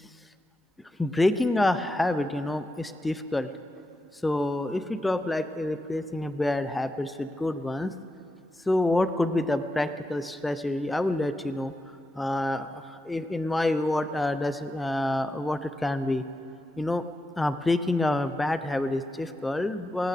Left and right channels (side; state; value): both; normal; correlation 0.88